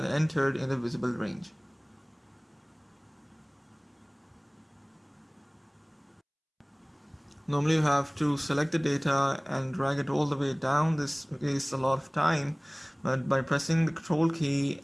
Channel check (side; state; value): both; identical; correlation 1.00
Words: entered in the visible range. Normally you have to select the data and drag it all the way down. This wastes a lot of time, but by pressing the Ctrl key